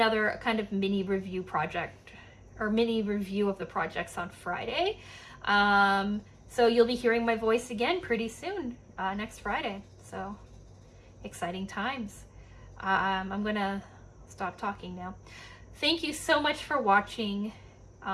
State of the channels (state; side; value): identical; both; correlation 1.00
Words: kind of mini review project or mini review of the projects on Friday. So you'll be hearing my voice again pretty soon, next Friday. So exciting times. I'm gonna stop talking now. Thank you so much for watching.